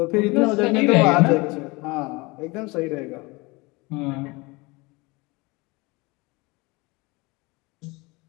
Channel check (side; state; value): right; quieter; 25.1 dB